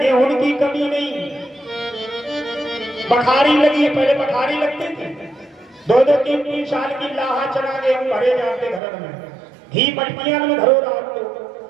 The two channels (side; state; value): left; drops out; at 8.8 s